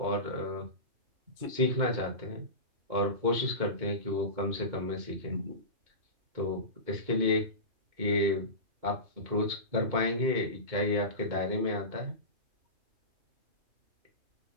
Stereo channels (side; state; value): left; late; 2.2 ms